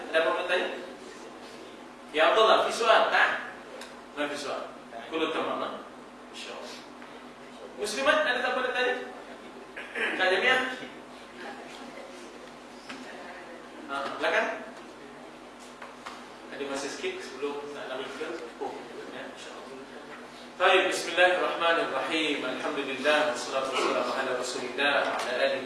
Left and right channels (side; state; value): both; identical; correlation 1.00